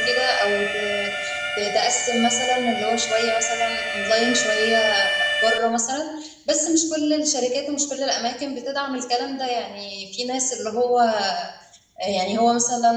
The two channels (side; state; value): both; identical; correlation 1.00